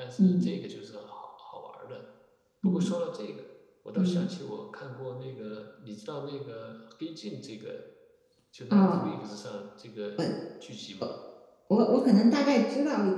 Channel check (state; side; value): identical; both; correlation 1.00